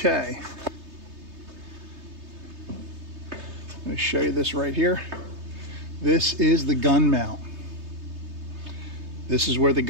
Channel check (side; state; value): left; late; 3.3 ms